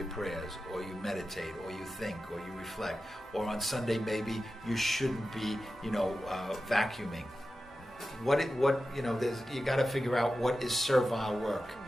prayers, or you meditate, or you think, or you reflect. Or on Sunday, maybe you shouldn't be, vacuuming. You got to figure out what is servile work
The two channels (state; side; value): normal; both; correlation 0.92